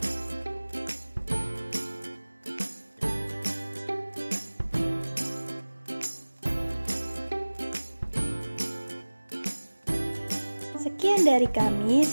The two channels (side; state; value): both; inverted; correlation -1.00